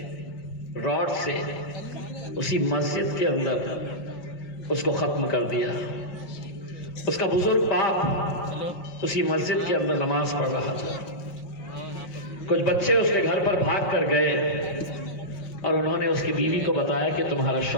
रॉड से उसी मस्जिद के अंदर उसको खत्म कर दिया। उसका बुजुर्ग बाप उसी मस्जिद के अंदर नमाज पढ़ रहा था। कुछ बच्चे उसके घर पर भाग कर गए और उन्होंने उसकी बीवी को बताया कि तुम्हारा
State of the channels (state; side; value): late; right; 5.5 ms